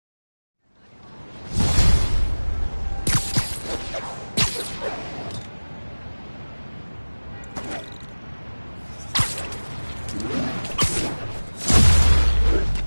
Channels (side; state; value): both; inverted; correlation -1.00